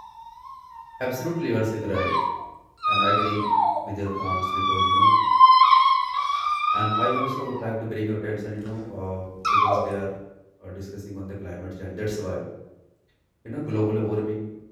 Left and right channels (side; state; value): both; identical; correlation 1.00